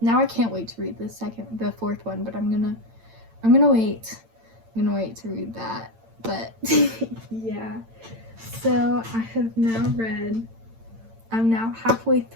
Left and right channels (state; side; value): late; left; 8.9 ms